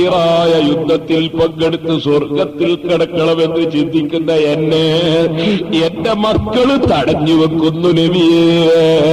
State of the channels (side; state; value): both; identical; correlation 1.00